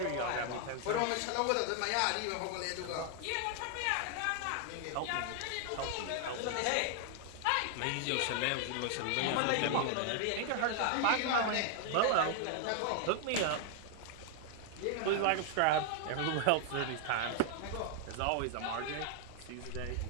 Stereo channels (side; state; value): both; different; correlation 0.00